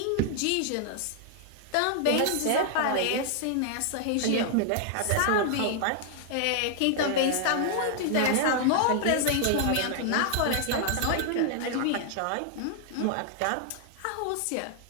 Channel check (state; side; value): different; both; correlation 0.00